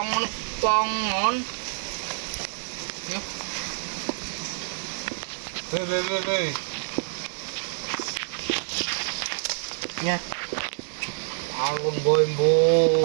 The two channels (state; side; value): silent; left; digital silence